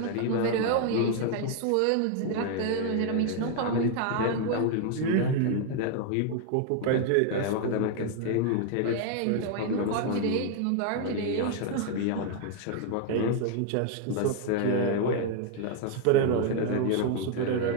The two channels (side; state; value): both; different; correlation 0.00